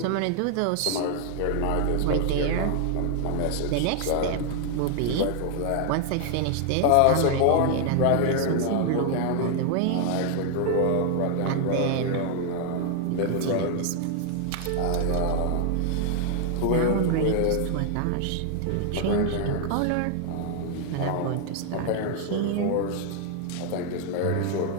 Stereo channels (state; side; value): different; both; correlation 0.00